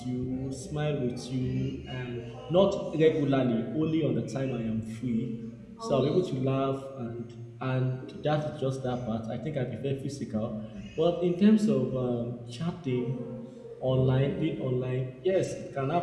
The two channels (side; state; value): both; identical; correlation 1.00